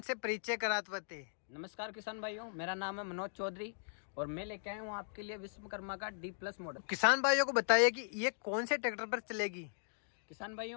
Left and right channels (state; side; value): silent; right; digital silence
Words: परिचय कराते हैं। नमस्कार किसान भाइयों, मेरा नाम है मनोज चौधरी और मैं लेके आया हूँ आपके लिए विश्वकर्मा का D+ मॉडल। किसान भाइयों को बताइए कि ये कौन से ट्रैक्टर पर चलेगी। किसान